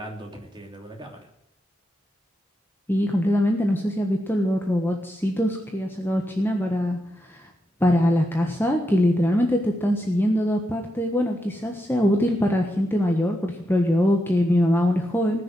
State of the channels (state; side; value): normal; both; correlation 0.85